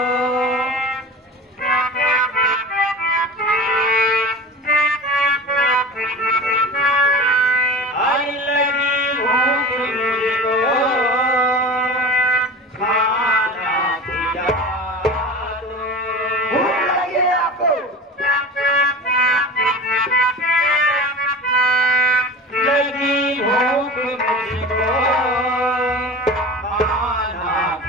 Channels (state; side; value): normal; both; correlation 0.33